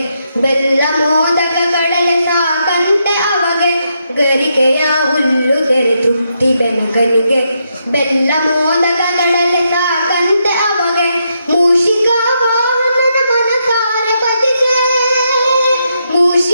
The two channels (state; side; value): inverted; both; correlation -0.80